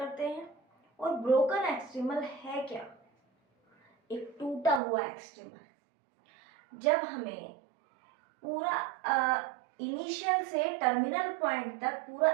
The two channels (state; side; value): drops out; left; at 4.8 s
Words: हैं। और ब्रोकन एक्सट्रीमल है क्या? एक टूटा हुआ एक्सट्रीमल। जब हमें पूरा इनिशियल से टर्मिनल पॉइंट तक पूरा